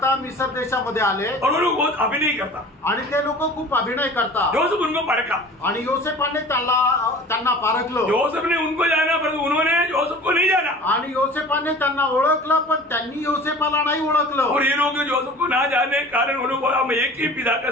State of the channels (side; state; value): both; normal; correlation 0.42